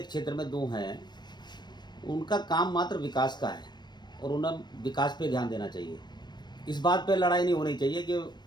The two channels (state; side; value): late; right; 0.21 ms